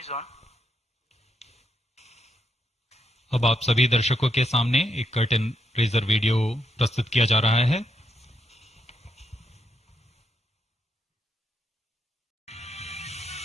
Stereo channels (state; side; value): normal; both; correlation 0.79